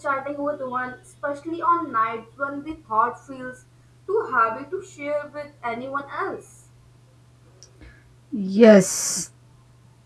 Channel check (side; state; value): both; identical; correlation 1.00